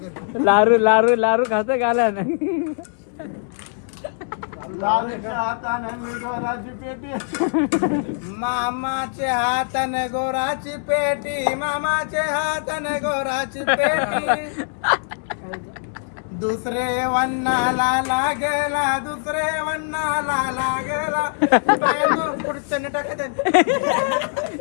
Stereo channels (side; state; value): right; silent; digital silence